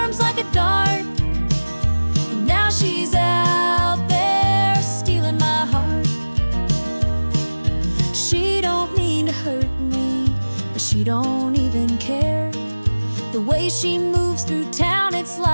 like a dart, and now she's out there stealing my heart. She don't mean to hurt me, but she don't even care. The way she moves through town, it's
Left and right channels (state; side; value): inverted; both; correlation -1.00